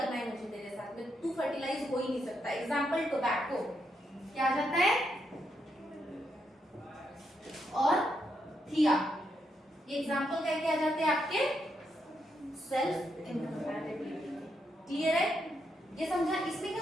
है मुझे तेरे साथ में, तू फर्टिलाइज हो ही नहीं सकता। एग्जाम्पल टोबैको क्या आ जाता है, और थिया, ये एग्जाम्पल क्या क्या आ जाते हैं आपके सेल्फ इनकम्पैटिबिलिटी। क्लियर है, ये समझा। इसमें क्या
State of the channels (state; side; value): normal; both; correlation 0.80